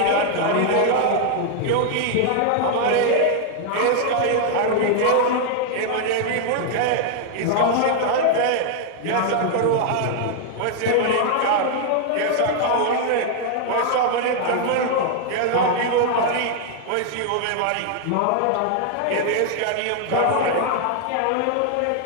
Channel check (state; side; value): different; both; correlation 0.00